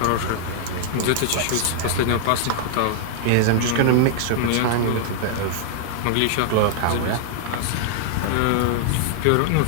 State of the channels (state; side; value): different; both; correlation -0.01